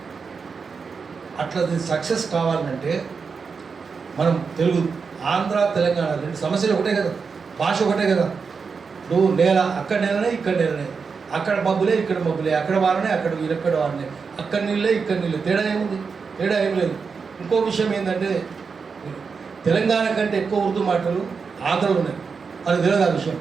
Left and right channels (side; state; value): left; quieter; 5.3 dB